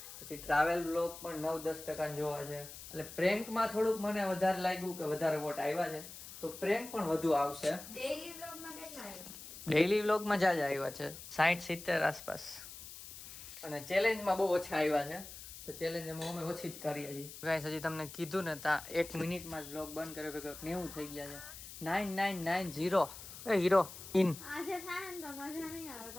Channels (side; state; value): left; noise; hiss, 13 dB below the sound